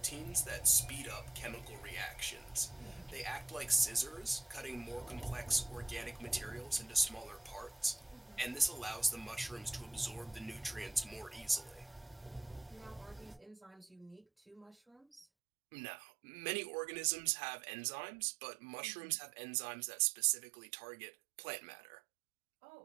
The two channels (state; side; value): drops out; left; at 15.2 s